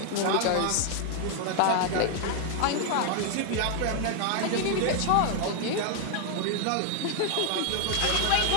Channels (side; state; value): both; different; correlation 0.00